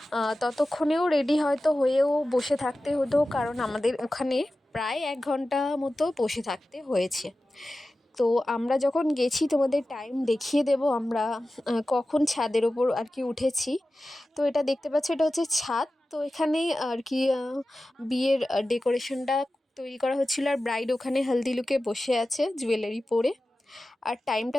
ততক্ষণেও রেডি হয়তো হয়েও বসে থাকতে হতো, কারণ আমাদের ওখানে প্রায় 1 ঘন্টা মতো বসে থাকতে হয়েছে। তো আমরা যখন গেছি তোমাদের টাইম দেখিয়ে দেব আমরা কখন ছাদের ওপর আর কি উঠেছি। তো এটা দেখতে পাচ্ছ, এটা হচ্ছে ছাদ। তো এখানে আর কি বিয়ের ডেকোরেশনটা তৈরি করা হচ্ছিলো, আর ব্রাইড ওখানে হলদি লুকে বসে আছে জুয়েলারি পরে। আর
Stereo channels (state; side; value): normal; both; correlation 0.94